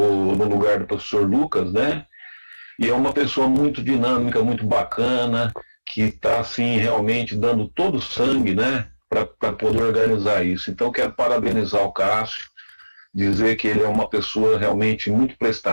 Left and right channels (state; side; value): inverted; both; correlation -1.00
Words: lugar do professor Lucas, né? E é uma pessoa muito dinâmica, muito bacana, que está, assim, realmente dando todo o sangue, né, para poder organizar isso. Então, quero parabenizar o Cássio, dizer que ele é uma pessoa realmente muito